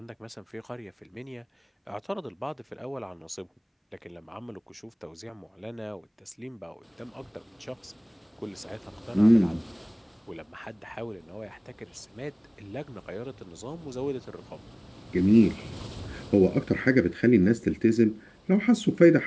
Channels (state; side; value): identical; both; correlation 1.00